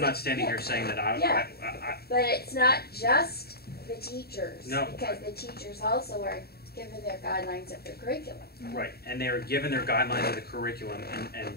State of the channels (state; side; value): late; right; 0.46 ms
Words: standing here saying that Yeah. I But it's not just the teachers. No. Because the teachers also are given their guidelines of their curriculum. right, and they are given their guidelines of the curriculum, and